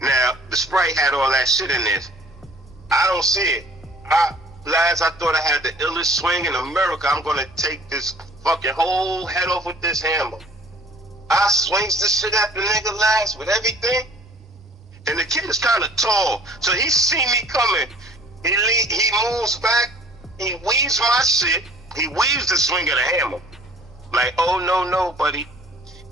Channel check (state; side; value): normal; both; correlation 0.52